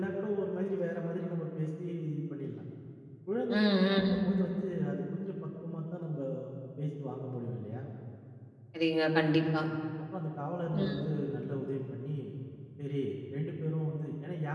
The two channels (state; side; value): identical; both; correlation 1.00